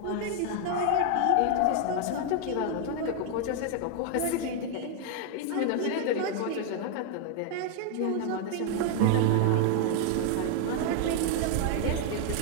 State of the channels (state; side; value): different; both; correlation 0.00